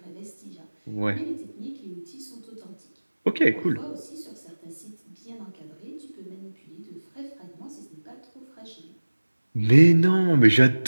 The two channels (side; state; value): both; inverted; correlation -1.00